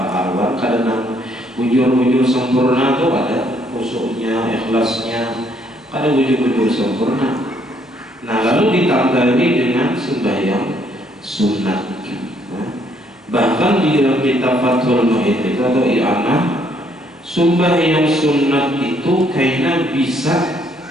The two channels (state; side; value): normal; both; correlation 0.68